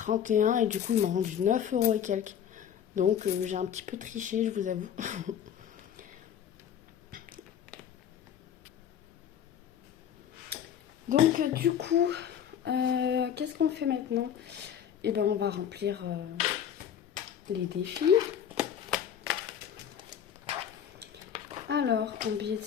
et du coup, ils m'ont rendu 9 euros et quelques. Donc, j'ai un petit peu triché, je vous avoue. Donc, du coup, qu'est-ce qu'on fait maintenant? Eh ben, on va remplir les défis. Alors, en billet de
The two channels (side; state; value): right; quieter; 9.1 dB